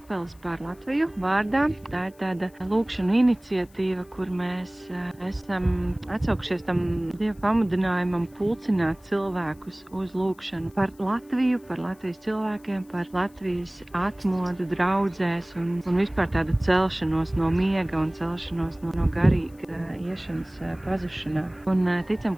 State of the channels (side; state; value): left; noise; hiss, 29 dB below the sound